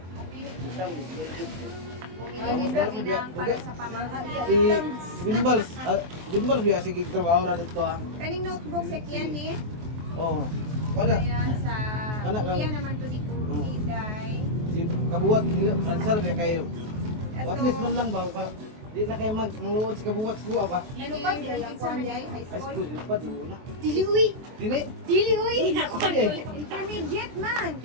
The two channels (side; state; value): left; late; 23 ms